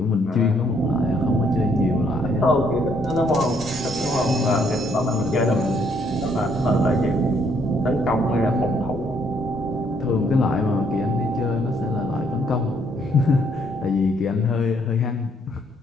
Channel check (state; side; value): normal; both; correlation 0.69